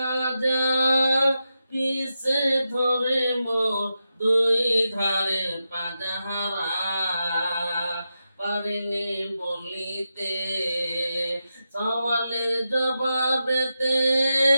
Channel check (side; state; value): both; inverted; correlation -0.89